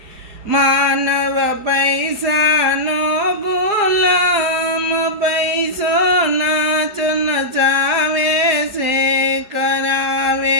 માનવ પૈસાનો ગુલામ, પૈસો નાચ નચાવે છે, કરાવે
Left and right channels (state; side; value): late; left; 4.7 ms